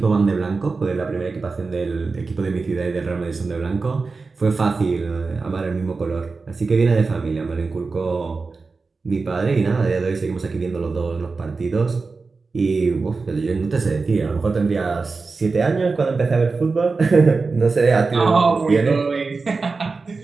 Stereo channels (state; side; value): quieter; left; 4.2 dB